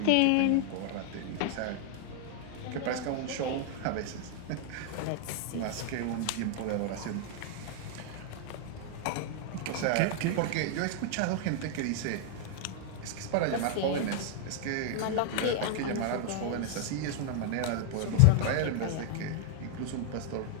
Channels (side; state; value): both; different; correlation 0.00